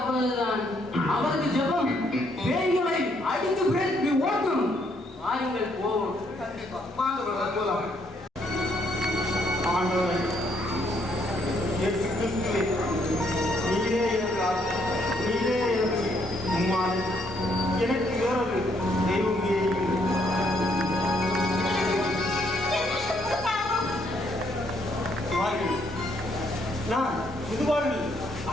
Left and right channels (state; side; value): normal; both; correlation 0.71